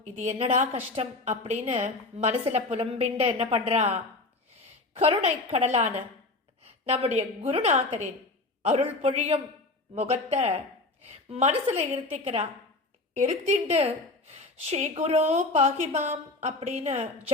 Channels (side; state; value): right; quieter; 3.2 dB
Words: இது என்னடா கஷ்டம் அப்படின்னு மனசுல புலம்பிண்டு என்ன பண்றா, கருணை கடலான நம்முடைய குருநாதரின் அருள் பொழியும் முகத்தை மனசுல இருத்திக்கிறா. இருத்திண்டு ஸ்ரீ குரு பாகிமாம் அப்படின்னு